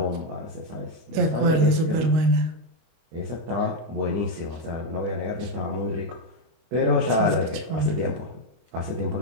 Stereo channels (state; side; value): late; left; 25 ms